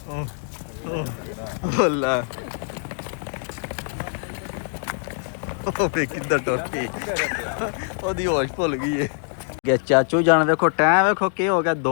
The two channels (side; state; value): right; silent; 63 dB below the other